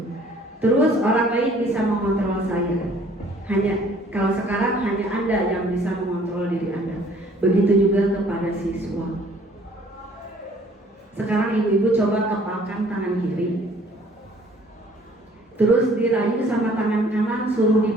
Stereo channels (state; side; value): normal; both; correlation 0.57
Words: Terus orang lain bisa mengontrol saya. Kalau sekarang hanya Anda yang bisa mengontrol diri Anda. Begitu juga kepada siswa. Sekarang ibu-ibu coba kepalkan tangan kiri. Terus dirayu sama tangan kanan, suruh